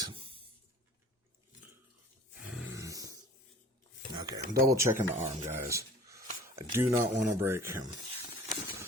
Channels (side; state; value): both; normal; correlation 0.45